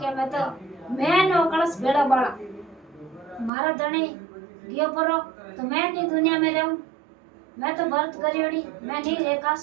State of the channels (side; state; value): left; drops out; at 3.5 s